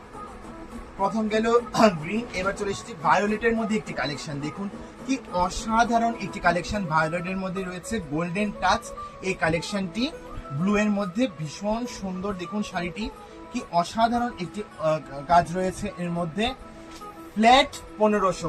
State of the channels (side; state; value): both; identical; correlation 1.00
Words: প্রথম গেল গ্রিন, এবার চলে এসেছি ভায়োলেটের মধ্যে একটি কালেকশন। দেখুন কি অসাধারণ একটি কালেকশন। ভায়োলেটের মধ্যে রয়েছে গোল্ডেন টাচ এই কালেকশনটি, ব্লু এর মধ্যে ভীষণ সুন্দর। দেখুন শাড়িটি কি অসাধারণ একটি কাজ রয়েছে এর মধ্যে। ফ্ল্যাট